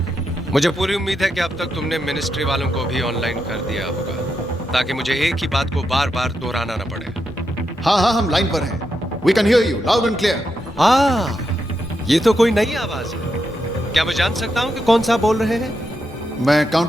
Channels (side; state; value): both; normal; correlation 0.84